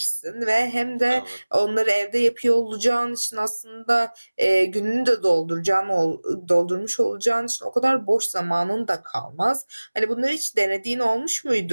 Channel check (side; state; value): both; inverted; correlation -1.00